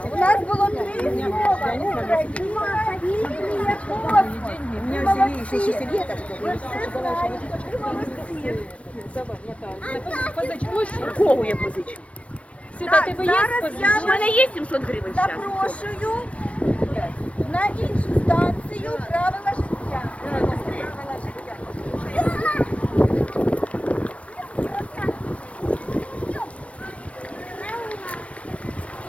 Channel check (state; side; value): late; right; 0.063 ms